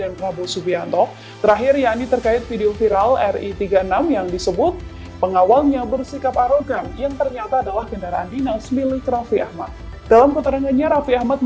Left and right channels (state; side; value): identical; both; correlation 1.00